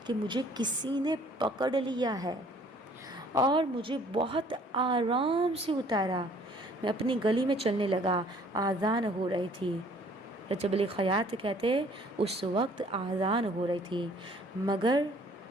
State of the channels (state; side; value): normal; both; correlation 0.57